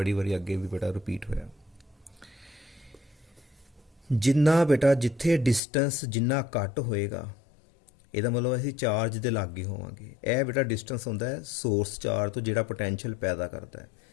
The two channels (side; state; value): right; drops out; at 5.6 s